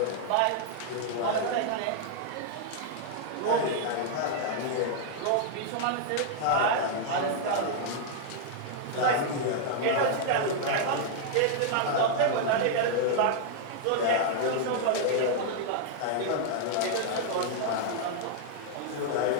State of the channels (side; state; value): both; different; correlation 0.00